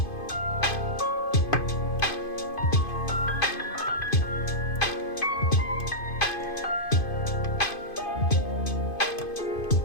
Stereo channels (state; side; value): late; right; 2.5 ms